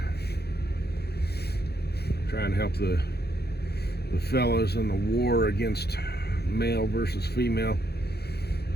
Trying to help the fellas in the war against male versus female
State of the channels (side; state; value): right; late; 0.47 ms